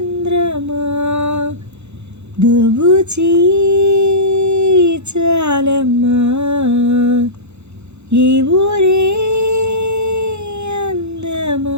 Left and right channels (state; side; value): late; left; 0.81 ms